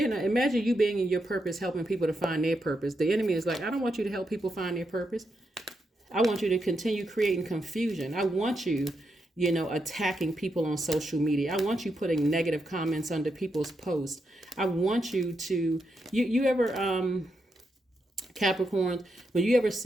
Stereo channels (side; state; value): both; normal; correlation 0.83